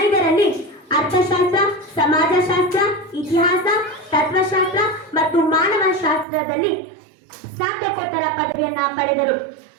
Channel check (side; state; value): left; drops out; at 6.2 s